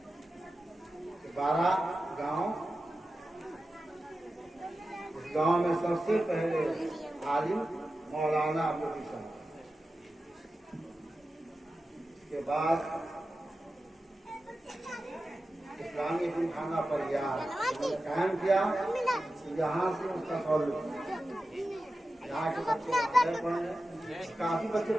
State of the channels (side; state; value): both; normal; correlation 0.93